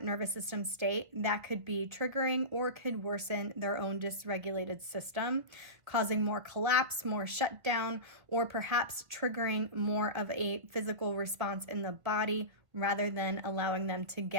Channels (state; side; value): late; left; 1.4 ms